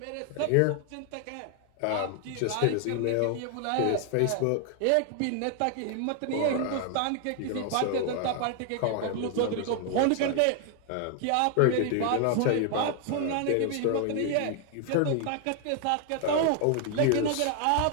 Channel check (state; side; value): different; both; correlation 0.00